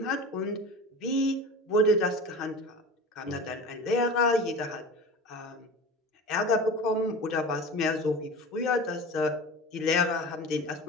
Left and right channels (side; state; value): both; normal; correlation 0.33